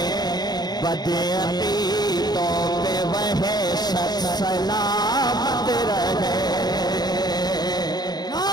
बदअकीदों पे वह शख्स सलामत रहे।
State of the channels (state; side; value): late; right; 0.20 ms